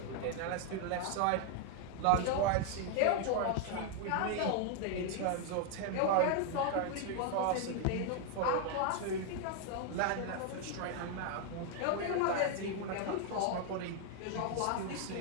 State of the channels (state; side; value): different; both; correlation 0.00